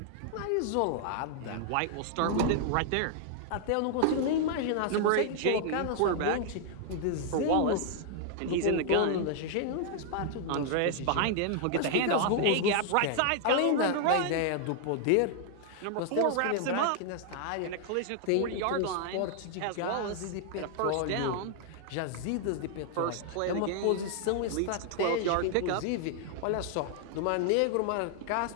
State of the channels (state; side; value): different; both; correlation 0.00